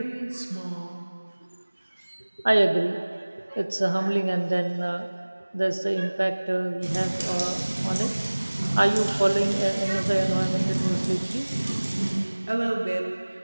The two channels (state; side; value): inverted; both; correlation -1.00